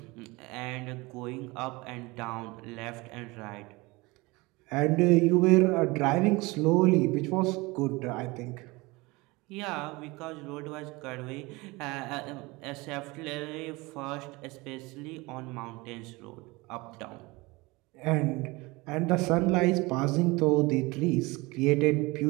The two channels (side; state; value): left; quieter; 23.5 dB